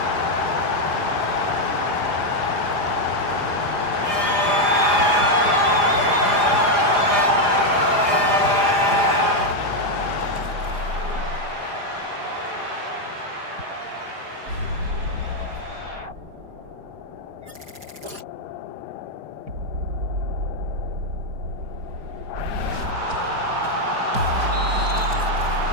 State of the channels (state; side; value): late; left; 4.9 ms